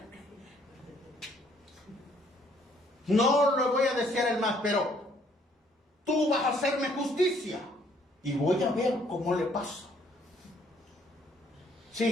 No lo voy a desear el mal, pero tú vas a hacerme justicia y voy a ver cómo le pasa.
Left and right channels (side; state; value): both; normal; correlation 0.64